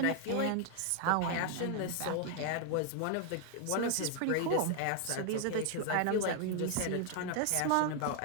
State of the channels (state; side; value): different; both; correlation 0.00